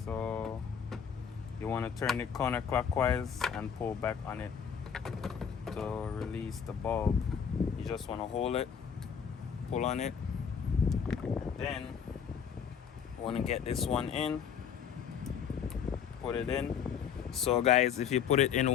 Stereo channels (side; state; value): right; quieter; 7.4 dB